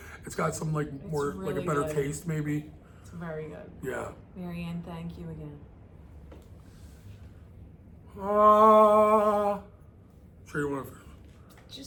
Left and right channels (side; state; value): both; identical; correlation 1.00